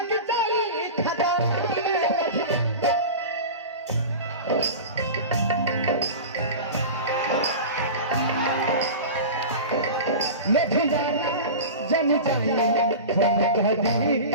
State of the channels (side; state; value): both; inverted; correlation -0.30